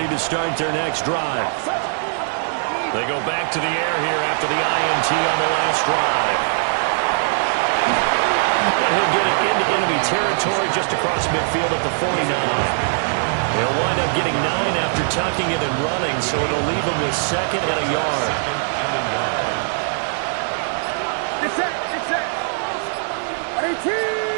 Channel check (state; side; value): silent; left; digital silence